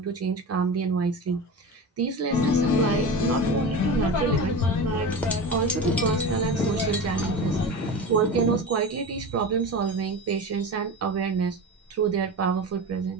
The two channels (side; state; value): both; normal; correlation 0.28